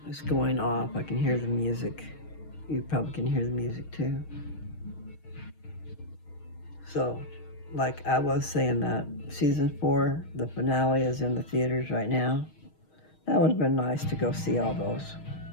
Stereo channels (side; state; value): right; late; 6.4 ms